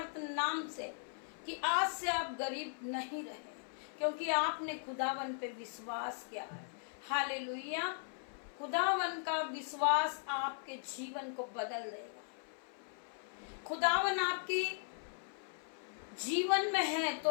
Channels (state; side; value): silent; right; 52 dB below the other